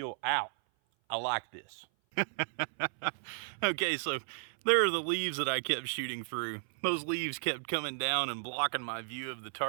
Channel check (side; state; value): left; silent; 55 dB below the other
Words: out. I like this. Okay, so there are the leaves that I kept shooting through. Those leaves kept coming down and blocking my view of the